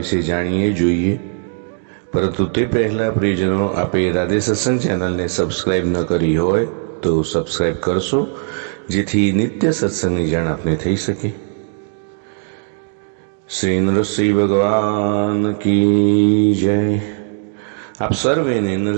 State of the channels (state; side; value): silent; left; 63 dB below the other